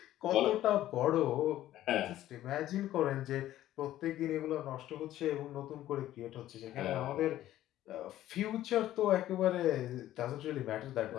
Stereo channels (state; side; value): quieter; right; 13.6 dB